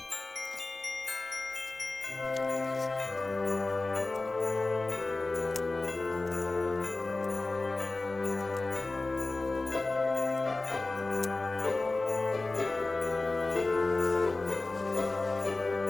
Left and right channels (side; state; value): right; quieter; 3.2 dB